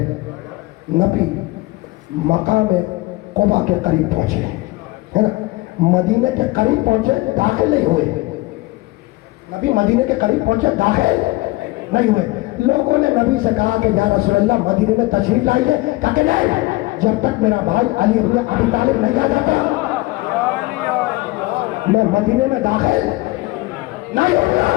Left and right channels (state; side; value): quieter; right; 20.9 dB